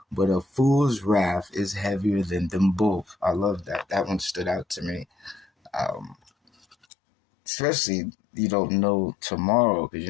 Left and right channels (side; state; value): right; drops out; at 6.8 s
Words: but a fool's wrath is heavier than them both. I love that. That one stood out to me. Especially you don't know tomorrow because you